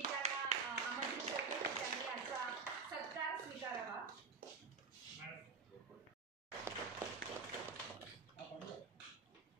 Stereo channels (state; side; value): quieter; left; 4.7 dB